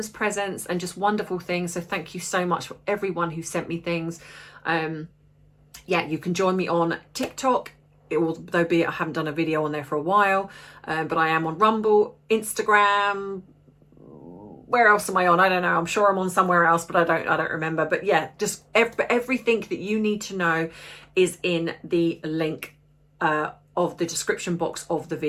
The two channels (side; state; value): both; identical; correlation 1.00